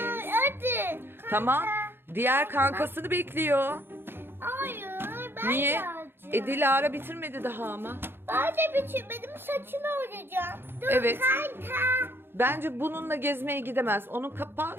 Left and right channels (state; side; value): late; left; 0.11 ms